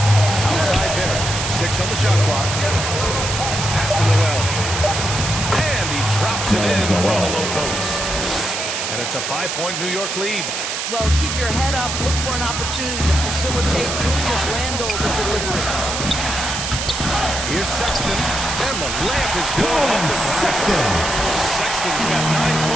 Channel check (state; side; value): noise; right; hiss, 3 dB below the sound